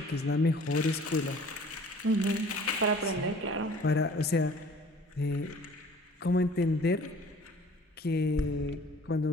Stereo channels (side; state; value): both; normal; correlation 0.50